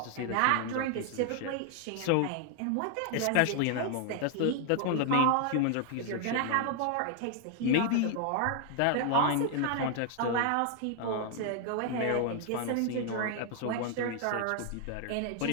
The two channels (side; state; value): both; different; correlation 0.00